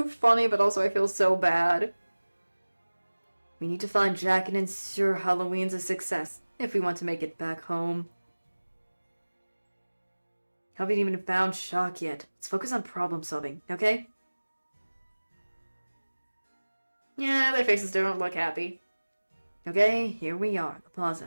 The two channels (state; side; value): inverted; both; correlation -1.00